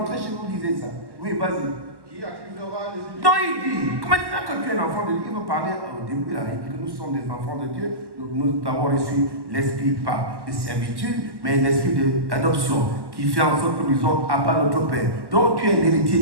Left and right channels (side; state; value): left; late; 1.1 ms